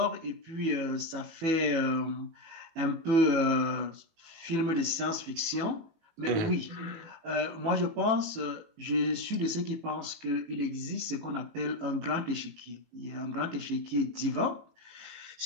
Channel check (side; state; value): left; late; 18 ms